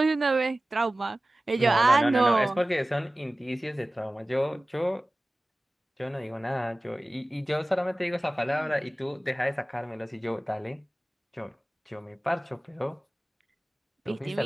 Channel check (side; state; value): both; normal; correlation 0.97